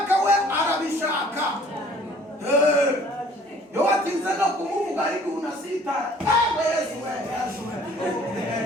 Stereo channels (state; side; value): normal; both; correlation 0.55